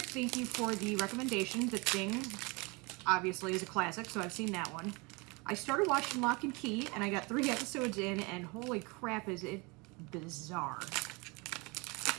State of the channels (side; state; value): left; quieter; 27.5 dB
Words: thank you for the recommendation. The Thing, obviously, is a classic, so I've seen that one. I started watching Lock and Key, and I got 3 episodes in, and holy crap, is it bizarre.